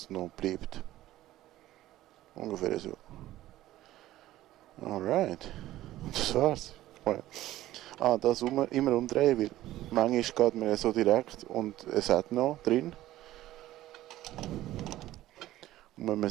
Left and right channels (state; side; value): quieter; left; 14.9 dB